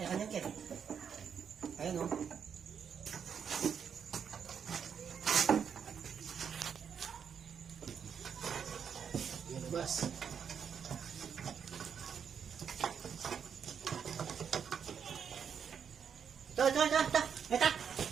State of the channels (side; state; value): left; quieter; 7.4 dB